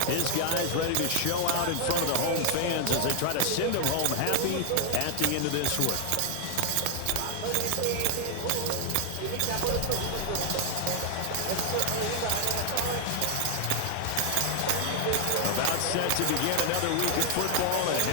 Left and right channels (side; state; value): both; different; correlation 0.00